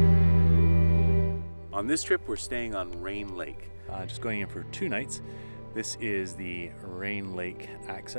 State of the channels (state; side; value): inverted; both; correlation -1.00